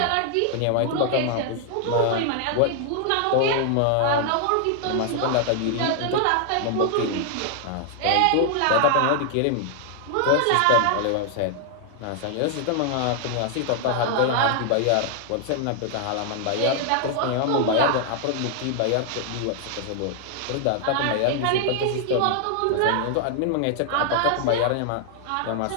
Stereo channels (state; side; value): different; both; correlation 0.00